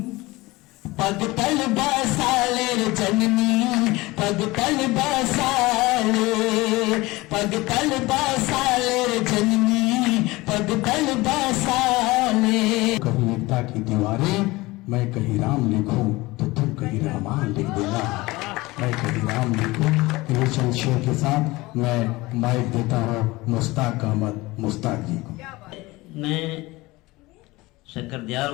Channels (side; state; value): right; quieter; 21.0 dB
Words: पग तल बसाले रे जननी पग तल बसाले, पग तल बसाले रे जननी पग तल बसाले। कहीं एकता की दीवारें मैं कहीं राम लिखूं तो तुम कहीं रहमान लिख देना, मैं कहीं राम लिखूं। ये चंद शेर के साथ मैं माइक देता हूँ मुश्ताक अहमद मुश्ताक जी को। मैं शक्कर